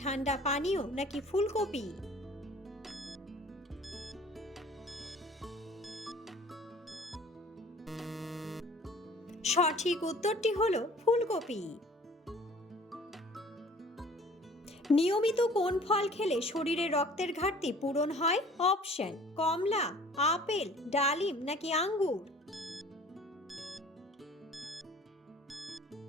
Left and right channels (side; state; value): both; normal; correlation 0.50